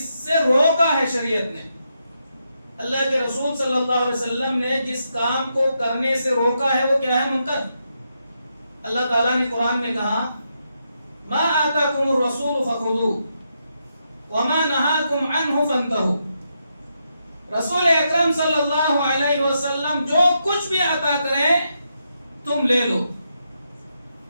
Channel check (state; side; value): inverted; both; correlation -0.82